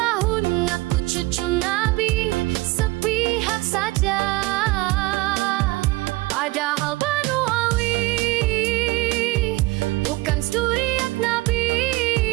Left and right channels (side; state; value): left; quieter; 21.1 dB